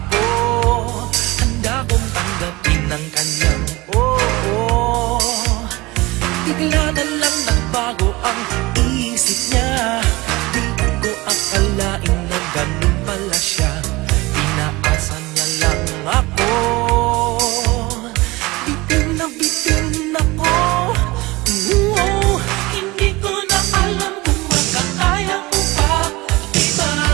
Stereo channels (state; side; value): quieter; left; 21.7 dB